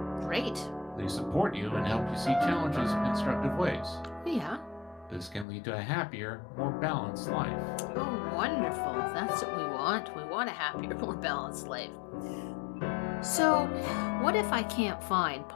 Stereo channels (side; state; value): right; drops out; at 5.5 s